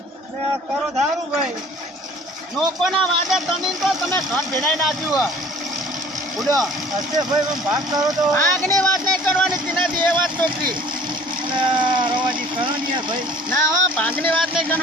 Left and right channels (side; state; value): both; normal; correlation 0.50